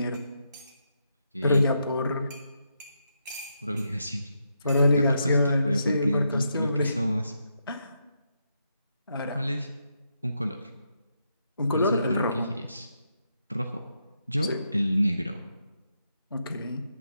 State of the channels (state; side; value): inverted; both; correlation -0.81